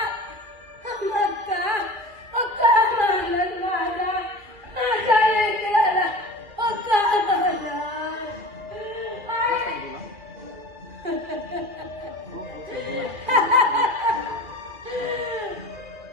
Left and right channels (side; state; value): left; late; 2.4 ms